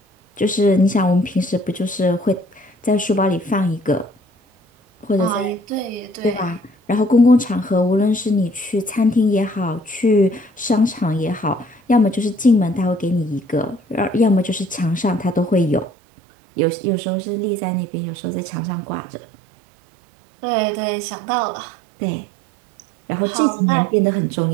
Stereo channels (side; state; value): left; drops out; at 15.9 s